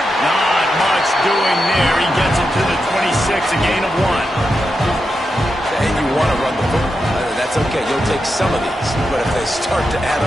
Not much doing there. He gets it to the 26, a gain of 1. And you want to run the football. That's okay. You'll take some of these. But if they start to add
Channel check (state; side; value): normal; both; correlation 0.87